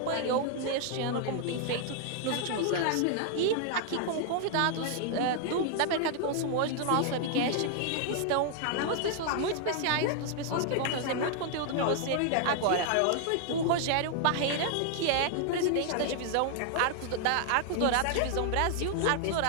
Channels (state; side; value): different; both; correlation 0.00